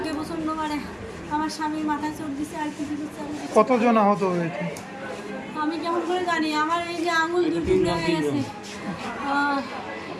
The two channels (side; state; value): both; identical; correlation 1.00